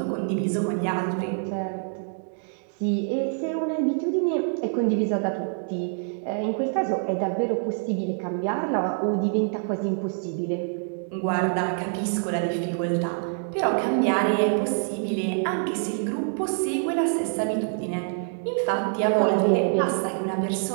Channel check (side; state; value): left; silent; 61 dB below the other